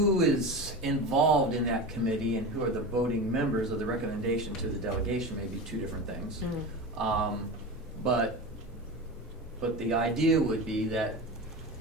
is involved in that committee and who are the voting members of the recommendation to the delegation may be two different things. But the idea would be that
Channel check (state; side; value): normal; both; correlation 0.27